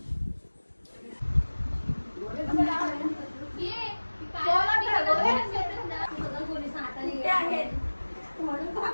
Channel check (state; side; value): inverted; both; correlation -1.00